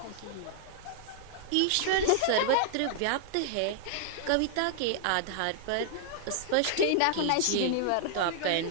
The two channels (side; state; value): both; different; correlation -0.01